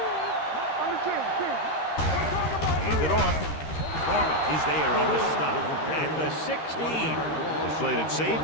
Handed off. Norman is there on the stop. At the 16. They played it safe,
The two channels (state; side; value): late; right; 13 ms